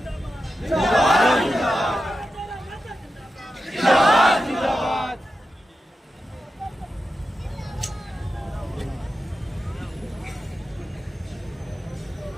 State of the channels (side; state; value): both; normal; correlation 0.91